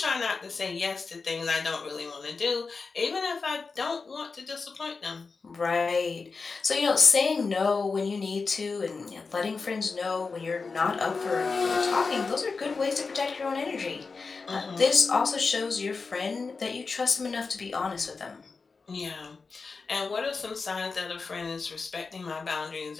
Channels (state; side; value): quieter; right; 4.5 dB